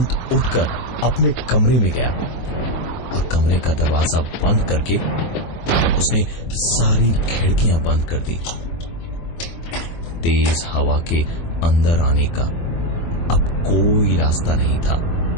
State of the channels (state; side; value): late; right; 24 ms